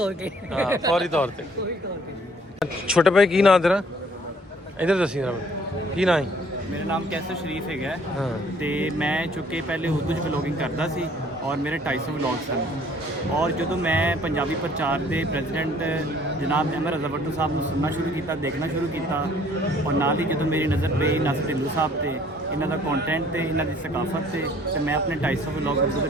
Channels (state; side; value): normal; both; correlation 0.58